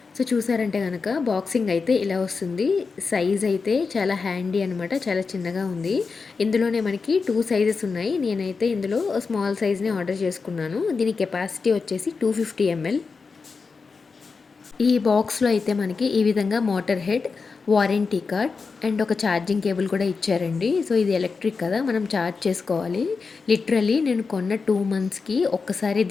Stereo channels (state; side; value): quieter; right; 4.8 dB